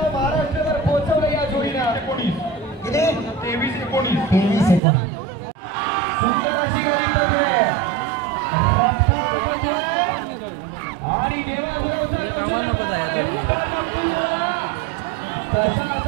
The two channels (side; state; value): left; drops out; at 4.8 s